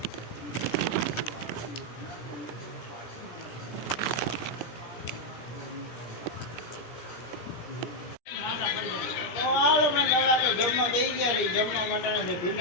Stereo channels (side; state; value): right; late; 17 ms